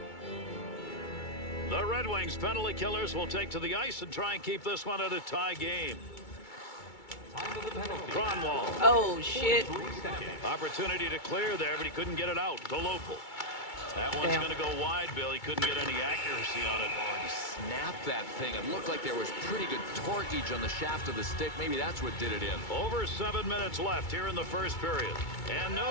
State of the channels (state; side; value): late; right; 2.3 ms